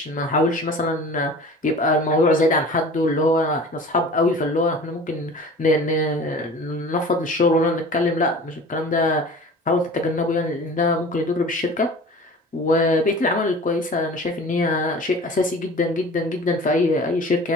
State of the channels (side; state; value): both; normal; correlation 0.41